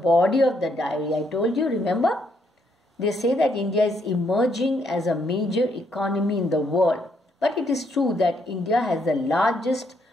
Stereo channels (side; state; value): both; normal; correlation 0.73